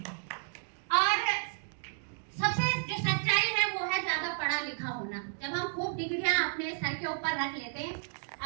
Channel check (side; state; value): left; silent; digital silence